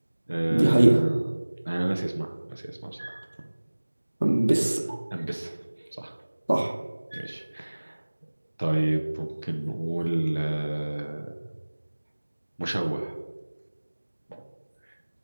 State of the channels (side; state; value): both; inverted; correlation -1.00